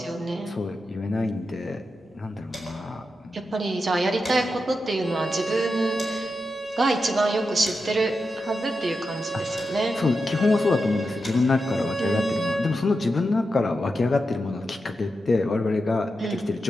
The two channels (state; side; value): normal; both; correlation 0.89